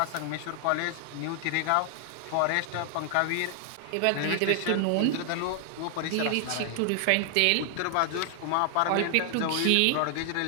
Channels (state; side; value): different; both; correlation 0.00